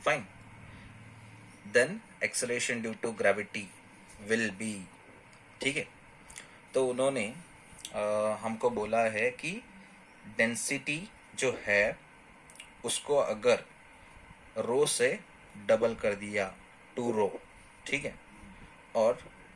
fine, then acceleration due to gravity will be. ठीक है, तो उन्होंने हमको बोला है कि density जो है उसको अगर रो से डबल कर दिया 2 रो, ठीक है, और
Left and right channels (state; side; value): identical; both; correlation 1.00